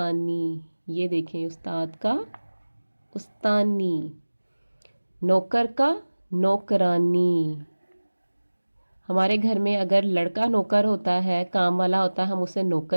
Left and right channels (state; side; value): inverted; both; correlation -1.00